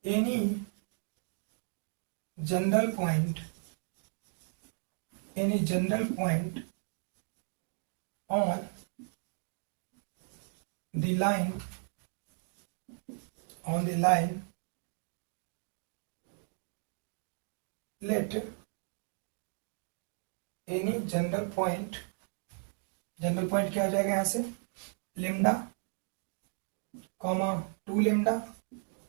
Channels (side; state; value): left; silent; 54 dB below the other